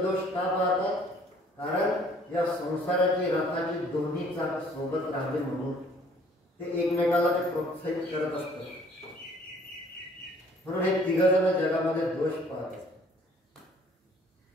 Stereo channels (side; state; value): both; normal; correlation 0.57